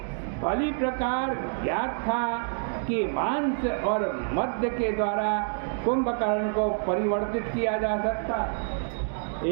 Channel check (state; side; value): silent; left; 60 dB below the other